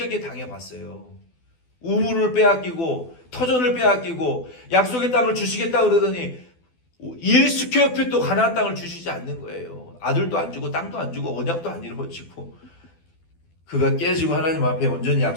당해봤어요. 우물을 빼앗기고 터전을 빼앗기고 약속의 땅을 주시겠다 그러더니 1스퀘어핏도 가나안 땅을 주시지 않는 거예요. 아들도 안 주고 땅도 안 주고 언약도 안 이루어지고, 그가 깨지고 하나님 앞에 온전히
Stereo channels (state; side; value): late; right; 12 ms